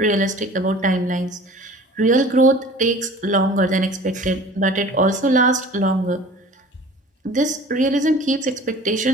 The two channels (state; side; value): normal; both; correlation 0.44